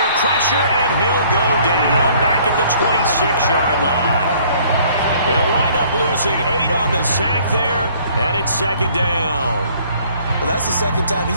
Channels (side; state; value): both; inverted; correlation -0.58